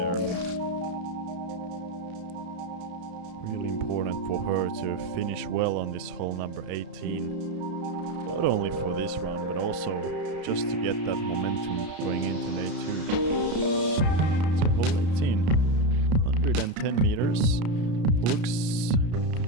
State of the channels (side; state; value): left; late; 33 ms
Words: Really important for her to finish well on this hole number 18. Not only for this round, but also just to get that momentum going into day 2. So hole 18, 110 meters. Looks